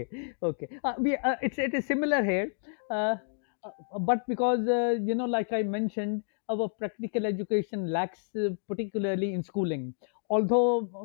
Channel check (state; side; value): silent; right; digital silence